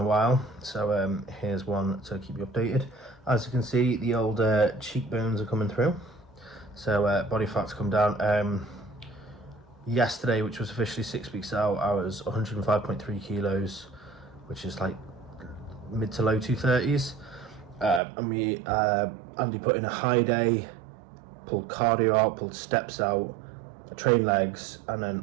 while, so here's one to keep you updated. As you can see, the old cheekbones are coming through, so body fat's come down. Yesterday, which was officially 6 weeks out, I was 105.3 kilos, which is like mid to low 230s. And Andy put in a high day, pulled cardio out, pulled steps out, train legs, and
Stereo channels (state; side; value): drops out; left; at 18.0 s